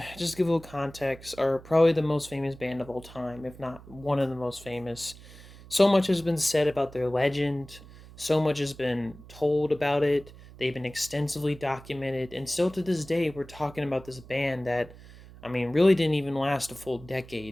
just to give a little context, are probably the most famous band of all time, if not one of the most famous. So much has been said about their legend, so much has been told about it. They've been extensively documented, and still to this day, we're talking about this band that, I mean, really didn't even last a full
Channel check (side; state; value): right; noise; hum, 19 dB below the sound